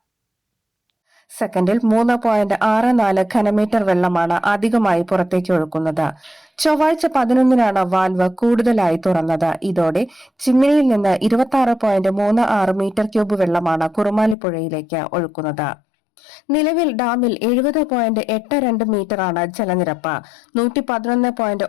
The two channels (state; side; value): drops out; right; at 14.4 s